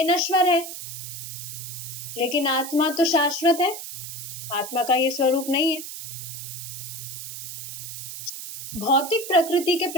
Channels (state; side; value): noise; right; hiss, 9 dB below the sound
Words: नश्वर है, लेकिन आत्मा तो शाश्वत है। आत्मा का ये स्वरूप नहीं है। भौतिक प्रकृति के